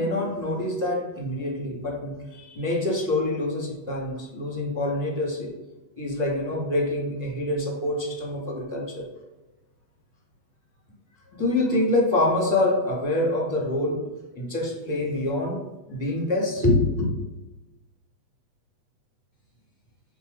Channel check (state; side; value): late; left; 8.2 ms